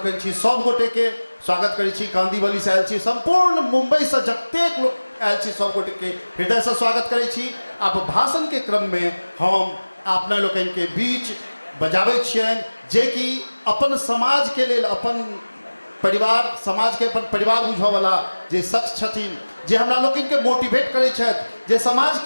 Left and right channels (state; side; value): inverted; both; correlation -1.00